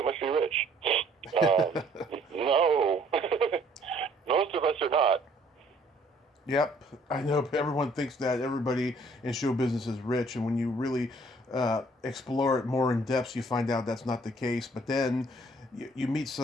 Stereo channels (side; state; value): both; normal; correlation 0.60